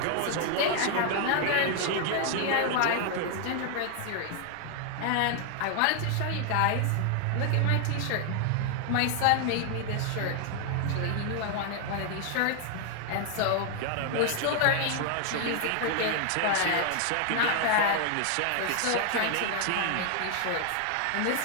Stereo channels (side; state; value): both; different; correlation 0.00